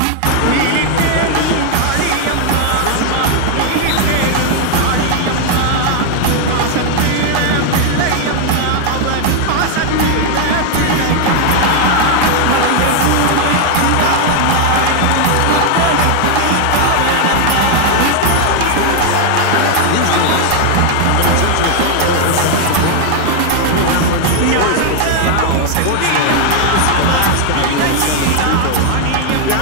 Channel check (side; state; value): both; different; correlation 0.00